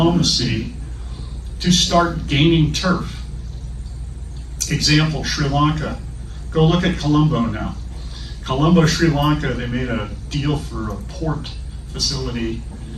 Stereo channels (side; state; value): both; identical; correlation 1.00